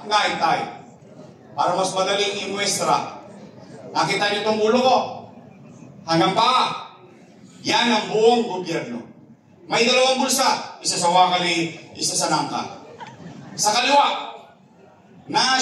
ngaitay. Para mas madaling imuestra. Nakita niyo itong ulo ko? Hanggang pa. Yan ang buong gobyerno. May dalawang bulsa. Isa sa wakali, isa sa nangka. Sa kaliwa,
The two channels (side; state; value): both; identical; correlation 1.00